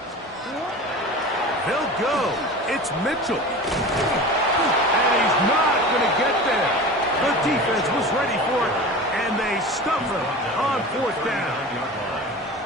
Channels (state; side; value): normal; both; correlation 0.34